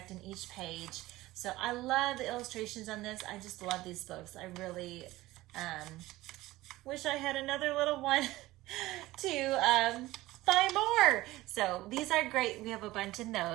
in each page. So I love the illustrations on this. I just love these books. I really wish I had another little one to buy more. So these are great. We have a bunch in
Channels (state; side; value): quieter; left; 17.8 dB